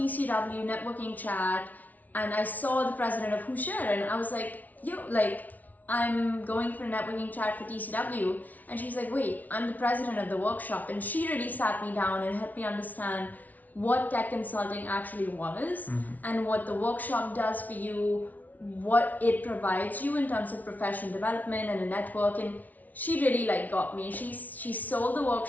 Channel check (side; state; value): right; late; 0.076 ms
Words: networking chat, and I saw the president of Who Share, and I was like, yo, like, I'm going for a networking chat for TCW. And she's like, wait, I'm the president of the workshop. And she really sat me down and helped me understand what tech consulting actually was, and what the workshop does for you, what it provides you in terms of professional development and a network. And she really like got me. She sold the